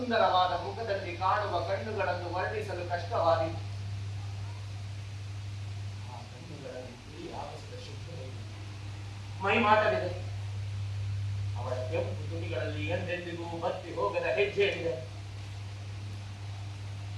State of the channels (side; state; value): both; identical; correlation 1.00